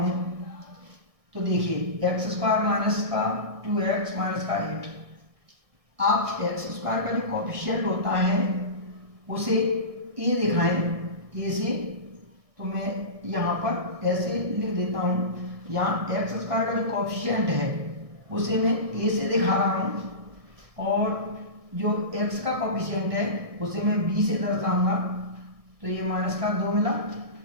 तो देखिए एक्स स्क्वायर माइनस का 2x माइनस का 8, आप एक्स स्क्वायर का जो कोफिशिएंट होता है उसे ए दिखाएं, ए से, तो मैं यहाँ पर ऐसे लिख देता हूँ। यहाँ एक्स स्क्वायर का जो कोफिशिएंट है उसे मैं ए से दिखा रहा हूँ, और जो x का कोफिशिएंट है उसे मैं b से दर्शाऊंगा। तो ये माइनस का 2 मिला,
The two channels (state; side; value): late; left; 1.6 ms